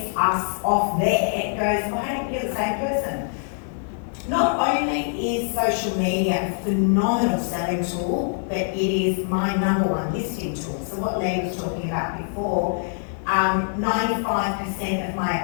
us off there goes, oh, hey, you're the same person. Not only is social media a phenomenal selling tool, but it is my #1 listing tool. So what Lee was talking about before, 95% of my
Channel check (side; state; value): right; silent; digital silence